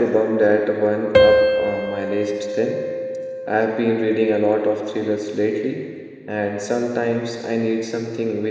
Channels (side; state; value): both; identical; correlation 1.00